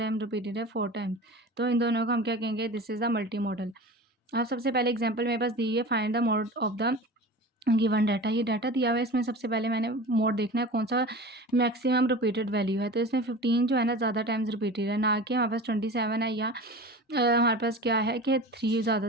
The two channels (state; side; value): normal; both; correlation 0.35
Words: रिपीटेड है, 4 टाइम। तो इन दोनों को हम क्या कहेंगे, this is the multi modal. अब सबसे पहले एग्जाम्पल मेरे पास दी है, find the mode of the given data. ये डाटा दिया हुआ है, इसमें सबसे पहले मैंने मोड देखना है कौन सा मैक्सिमम रिपीटेड वैल्यू है। तो इसमें 15 जो है ना ज़्यादा टाइम्स रिपीटेड है, ना कि हमारे पास 27 है, या हमारे पास क्या है कि 3 ज़्यादा